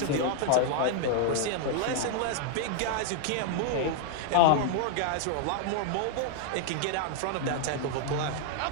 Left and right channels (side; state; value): both; different; correlation 0.00